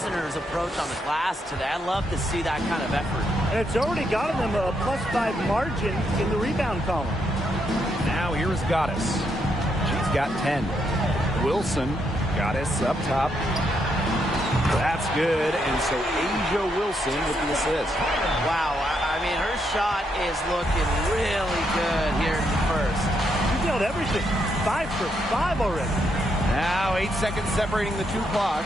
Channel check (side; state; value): both; normal; correlation 0.78